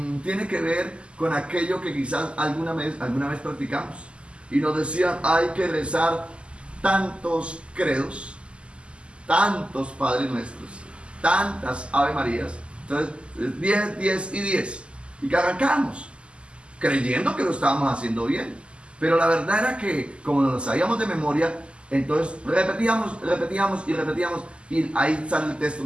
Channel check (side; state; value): left; late; 0.053 ms